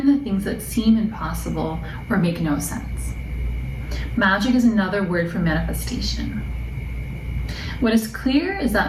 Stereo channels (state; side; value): identical; both; correlation 1.00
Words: the things that seem impossible or make no sense. Magic is another word for manifestation. What is clear is